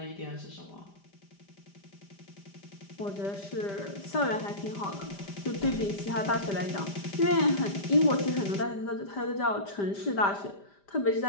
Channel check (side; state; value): right; late; 5.0 ms